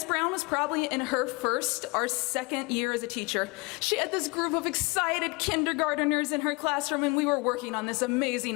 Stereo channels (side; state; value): right; quieter; 27.8 dB